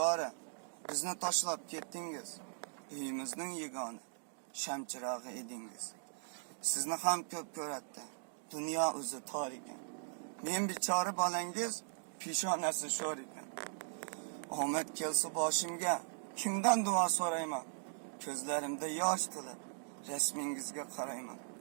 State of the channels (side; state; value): left; silent; digital silence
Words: bizni tashlab ketdingiz. Uyimizning yagona shamchirog'i edingiz. Sizni ham ko'p ko'ratdi. Dunyo o'zi tor ekan. Men bichora bolangiz peshonasi sho'r ekan. Omad kelsa boshimga kimdan duo so'rayman? Ko'zlarimda yosh to'lib rasmingizga qarayman.